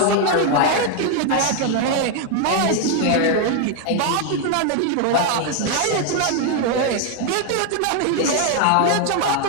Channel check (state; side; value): different; both; correlation 0.01